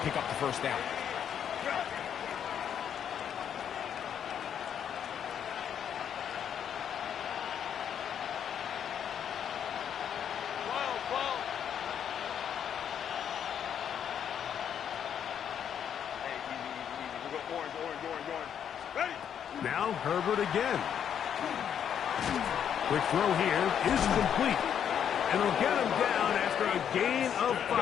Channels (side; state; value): right; quieter; 8.7 dB